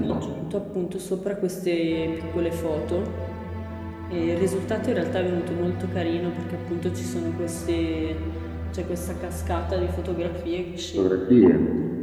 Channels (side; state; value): both; identical; correlation 1.00